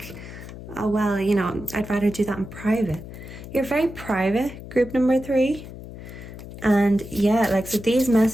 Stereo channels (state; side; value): noise; left; hum, 13 dB below the sound